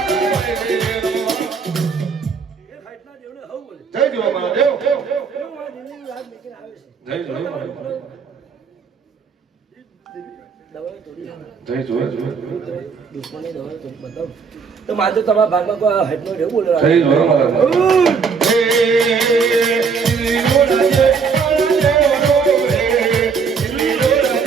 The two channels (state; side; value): quieter; left; 5.6 dB